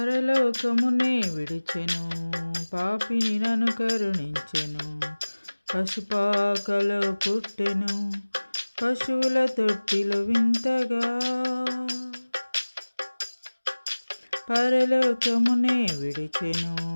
విడిచెను, పాపిని నన్ను కరుణించెను. పశుపాకలో పుట్టెను, పశువుల తొట్టిలో వింతగా. పరలోకమునే విడిచెను,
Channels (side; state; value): both; inverted; correlation -1.00